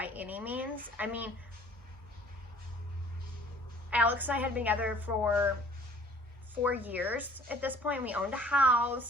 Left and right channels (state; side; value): normal; both; correlation 0.53